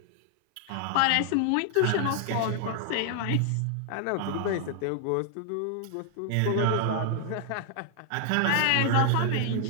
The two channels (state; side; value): different; both; correlation 0.00